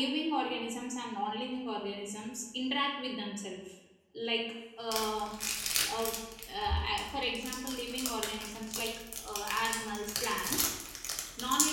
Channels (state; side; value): identical; both; correlation 1.00